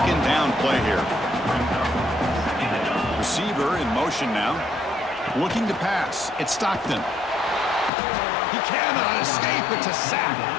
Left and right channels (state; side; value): drops out; right; at 7.9 s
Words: down play here. Receiver in motion now. Looking to pass. It's Stockton. He cannot escape. It's a sack.